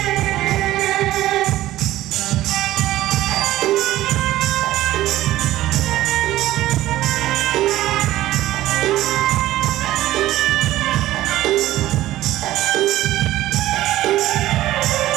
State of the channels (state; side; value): quieter; left; 15.1 dB